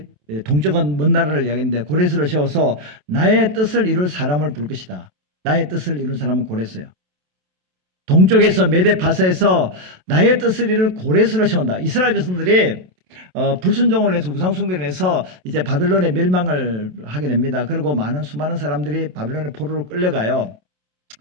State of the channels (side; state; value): left; late; 28 ms